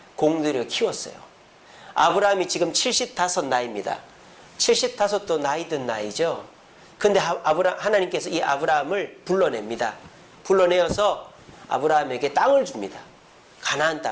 공들여 키웠어요. 아브람이 지금 75 나이입니다. 75도 나이 든 나이죠. 근데 하나님께서 이 아브람을 불러냅니다. 불러내어서 아브람에게 땅을 줍니다. 가나안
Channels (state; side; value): identical; both; correlation 1.00